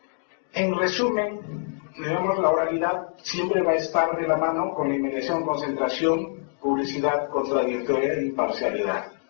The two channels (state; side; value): silent; right; 62 dB below the other